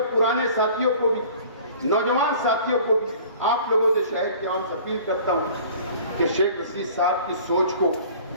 पुराने साथियों को भी, नौजवान साथियों को भी, आप लोगों से, शहर के आवाम से अपील करता हूं कि शेख रशीद साहब की सोच को,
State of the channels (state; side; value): inverted; both; correlation -0.48